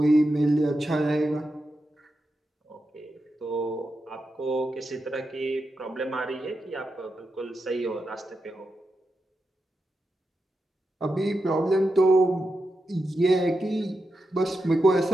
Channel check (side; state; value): both; normal; correlation 0.88